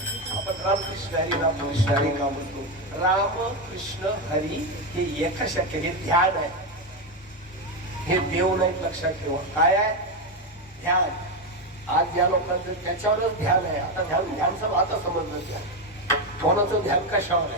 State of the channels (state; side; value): normal; both; correlation 0.10